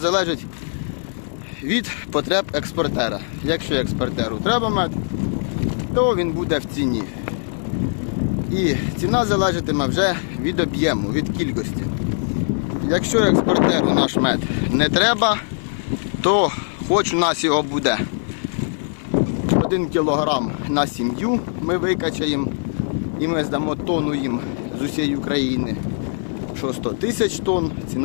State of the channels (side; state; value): right; silent; 56 dB below the other